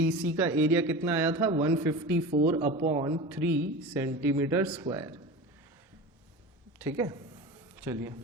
C का एरिया कितना आया था, 154 अपॉन 3 सेंटीमीटर स्क्वायर। ठीक है, चलिए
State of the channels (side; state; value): both; normal; correlation 0.31